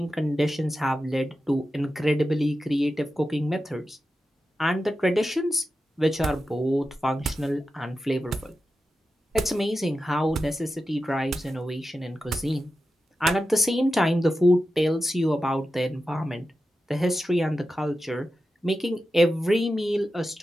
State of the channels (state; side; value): normal; both; correlation 0.91